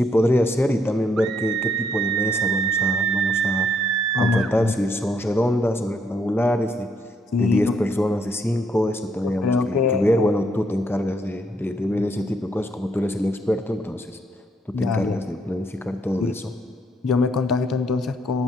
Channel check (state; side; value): normal; both; correlation 0.72